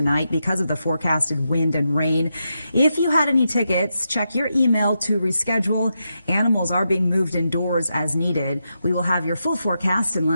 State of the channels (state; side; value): inverted; both; correlation -0.85